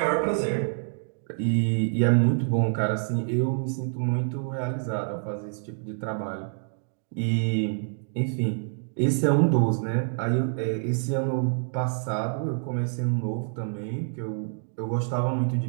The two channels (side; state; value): left; silent; digital silence